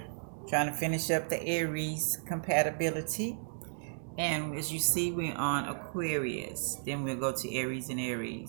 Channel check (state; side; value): silent; left; digital silence